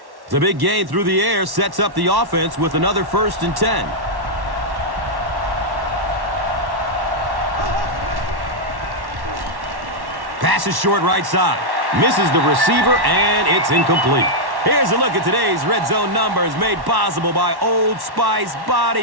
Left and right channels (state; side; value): late; left; 1.1 ms